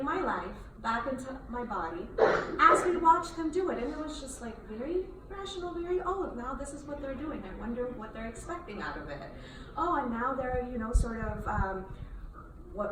my life back into my body as we watched them do it. And it was just like very rational, now this is what they're doing. I wonder what they're expecting out of it. Oh, and now they're, sort of,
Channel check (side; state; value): both; identical; correlation 1.00